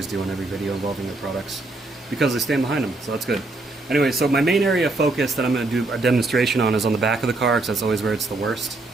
do on every video involving their products because they stand behind them, so that's good. Anyway, so my main area of focus that I'm going to do a demonstration on is on the back of the car, because that's always where it's the worst.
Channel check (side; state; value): left; quieter; 3.1 dB